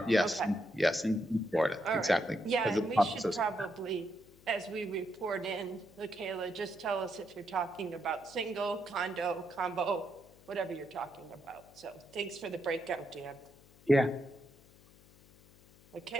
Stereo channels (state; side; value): noise; left; hum, 25 dB below the sound